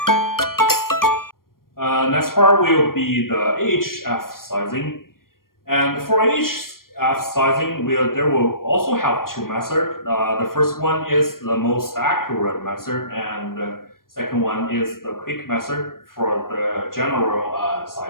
Next part will be the AHF sizing. And for AHF sizing, there will also have two methods. The first one is the most accurate method, and the second one is the quick method for the general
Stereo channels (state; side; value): late; right; 0.92 ms